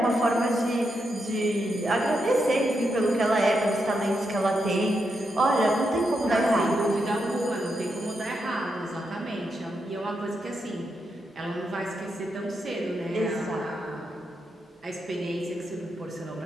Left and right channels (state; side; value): normal; both; correlation 0.83